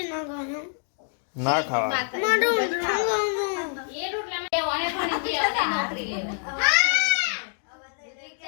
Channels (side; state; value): right; silent; digital silence